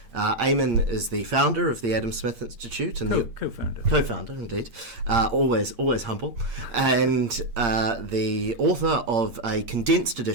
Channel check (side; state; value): left; late; 8.6 ms